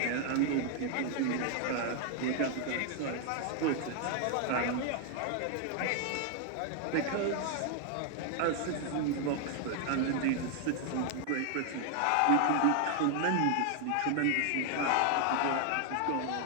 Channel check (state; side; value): different; both; correlation 0.00